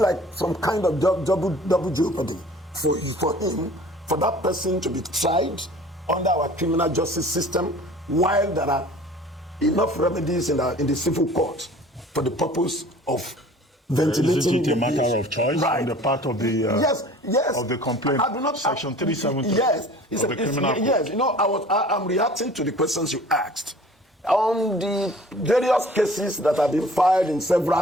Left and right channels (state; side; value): normal; both; correlation 0.47